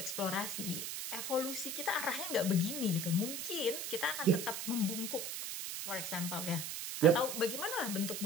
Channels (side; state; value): right; noise; hiss, 4 dB below the sound